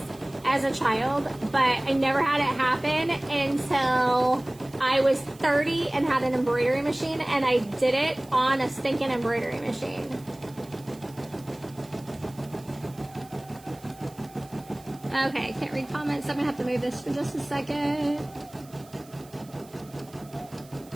as a child, but I never had it happen until I was 30 and had an embroidery machine, and I did it on a stinking embroidery machine. Okay, can't read comments. I'm gonna have to move this for just a second.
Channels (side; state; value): right; noise; hiss, 24 dB below the sound